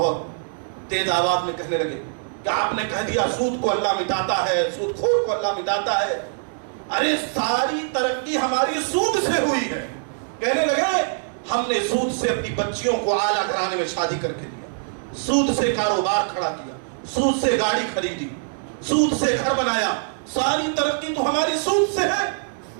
تیز آواز میں کہنے لگے کہ آپ نے کہہ دیا سود کو اللہ مٹاتا ہے، سود خور کو اللہ مٹاتا ہے. ارے ساری ترقی ہماری سود سے ہوئی ہے. کہنے لگے ہم نے سود سے اپنی بچیوں کو اعلیٰ گھرانے میں شادی کر کے دیا، سود سے کاروبار کھڑا کیا، سود سے گاڑی خریدی، سود سے گھر بنایا، ساری ترقی تو ہماری سود سے ہے،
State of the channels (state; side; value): silent; left; digital silence